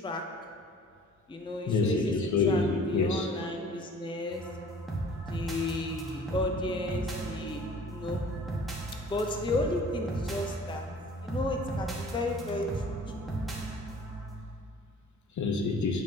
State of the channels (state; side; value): normal; both; correlation 0.49